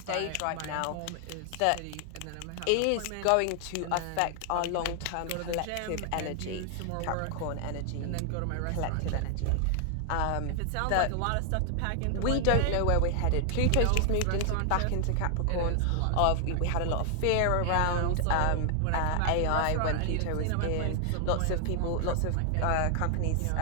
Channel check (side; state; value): both; different; correlation 0.00